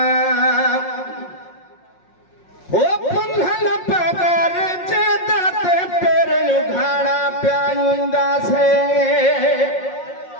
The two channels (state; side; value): late; right; 5.6 ms